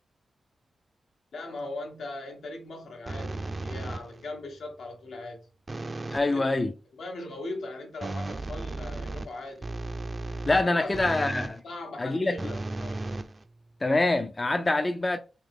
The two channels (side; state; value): both; normal; correlation 0.95